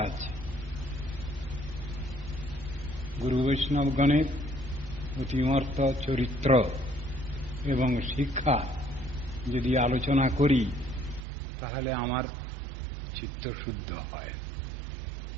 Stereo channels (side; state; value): left; drops out; at 11.2 s